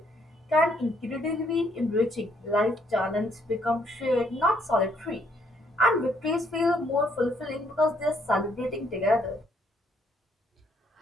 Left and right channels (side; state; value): both; normal; correlation 0.69